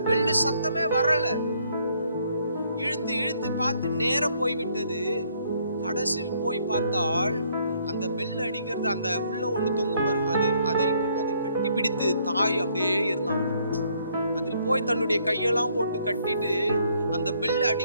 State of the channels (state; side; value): inverted; both; correlation -0.68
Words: பெல்லு சத்தமே வரல. இழுத்து இழுத்து பார்த்து நேரம் போய்விட்டது. கடைசியில் போய் பார்த்தால் அந்த பெல் அடிக்கிறது, அந்த உள்ள ஒண்ணு தொங்கும் பாருங்க, அதை கட்டி பிடித்து தாய் அப்படியே இருந்தாங்க. அதில் போய் தன்னுடைய கையெல்லாம் போட்டு கட்டிட்டு அந்த பெல்